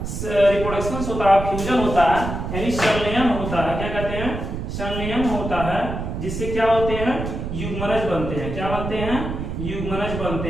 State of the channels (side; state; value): right; noise; rumble, 5 dB below the sound